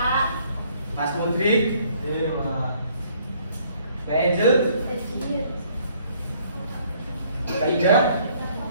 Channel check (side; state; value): both; inverted; correlation -0.63